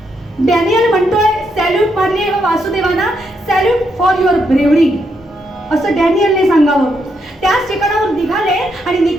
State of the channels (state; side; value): normal; both; correlation 0.78